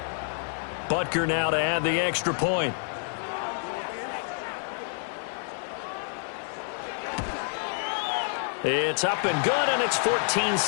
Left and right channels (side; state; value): right; silent; digital silence